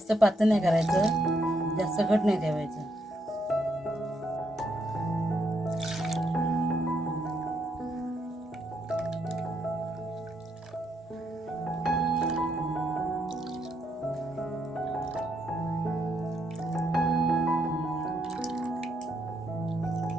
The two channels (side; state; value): both; normal; correlation 0.76